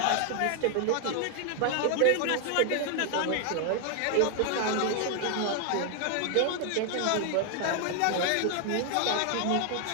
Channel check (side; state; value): both; different; correlation 0.00